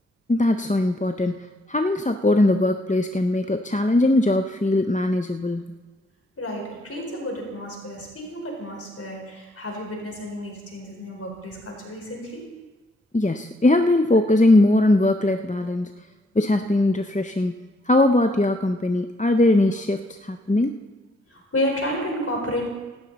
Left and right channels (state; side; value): normal; both; correlation 0.70